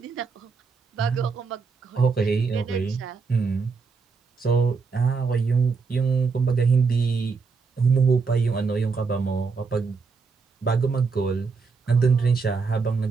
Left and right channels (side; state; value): left; quieter; 4.9 dB